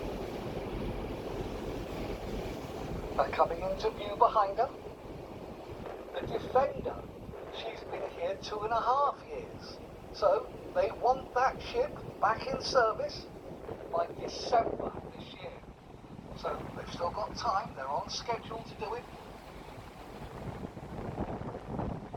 But coming into view behind her, the Defender. She's been here 2.5 years. So they want that ship back in service by December this year. So they've still got time, they're on schedule to do it.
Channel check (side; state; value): both; identical; correlation 1.00